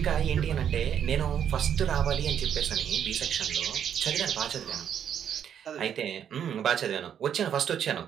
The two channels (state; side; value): quieter; left; 8.9 dB